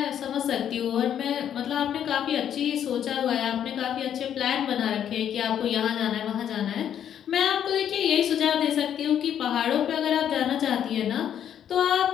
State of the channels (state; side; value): quieter; right; 9.5 dB